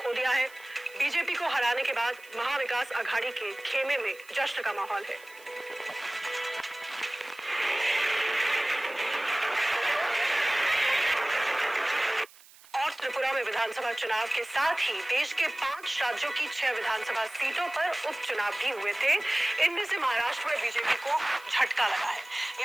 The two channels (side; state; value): right; noise; hiss, 23 dB below the sound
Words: दिया है। बीजेपी को हराने के बाद महाविकास अघाड़ी के खेमे में जश्न का माहौल है। और त्रिपुरा में विधानसभा चुनाव के साथ ही देश के 5 राज्यों की 6 विधानसभा सीटों पर उपचुनाव भी हुए थे। इनमें से महाराष्ट्र में बीजेपी को झटका लगा है।